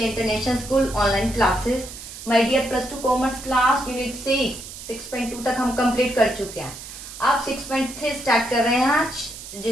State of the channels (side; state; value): right; noise; hiss, 13 dB below the sound